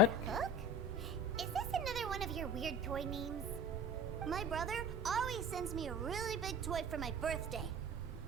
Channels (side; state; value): both; normal; correlation 0.37